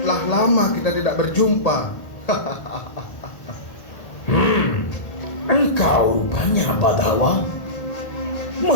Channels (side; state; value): right; late; 1.8 ms